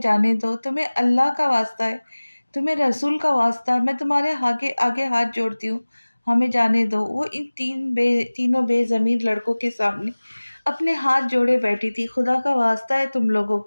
जाने दो, तुम्हें अल्लाह का वास्ता है, तुम्हें रसूल का वास्ता है, मैं तुम्हारे आगे आगे हाथ जोड़ती हूँ। हमें जाने दो। वो इन तीनों बेजमीर लड़कों के सामने अपने हाथ जोड़े बैठी थी। खुदा का वास्ता है तुम लोगों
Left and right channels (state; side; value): inverted; both; correlation -1.00